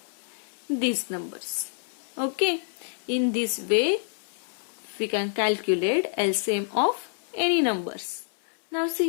these numbers. Okay. In this way we can calculate LCM of any numbers. Now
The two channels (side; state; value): right; silent; 60 dB below the other